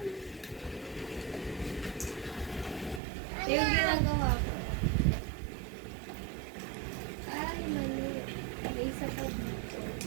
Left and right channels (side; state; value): left; drops out; at 3.0 s